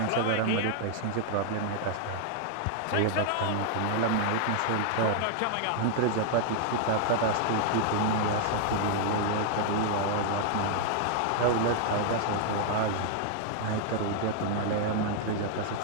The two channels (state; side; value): different; both; correlation 0.00